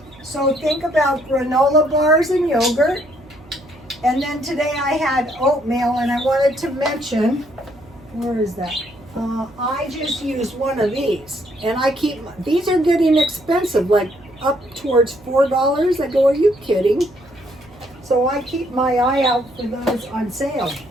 so think about granola bars and yogurt. And then today I had oatmeal, and I wanted to mention, where is that? I just use one of these, and I keep, these are getting expensive, like up towards $4. I go, are you kidding? So I keep my eye out for those on sale.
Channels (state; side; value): noise; right; hum, 25 dB below the sound